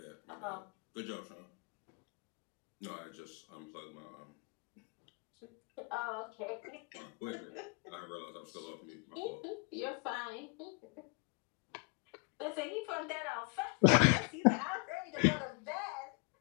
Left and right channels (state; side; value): quieter; right; 33.3 dB